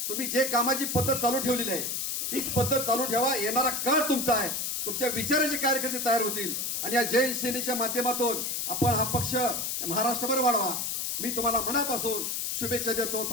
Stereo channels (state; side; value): noise; left; hiss, 1 dB below the sound